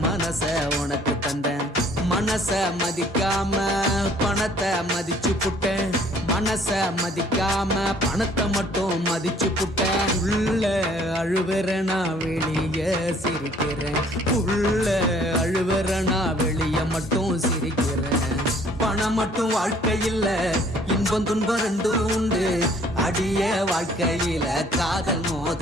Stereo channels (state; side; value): normal; both; correlation 0.58